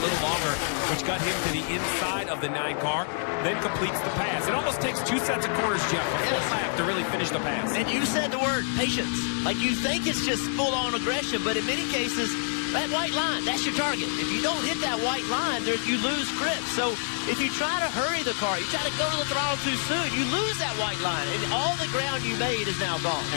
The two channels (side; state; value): right; silent; 60 dB below the other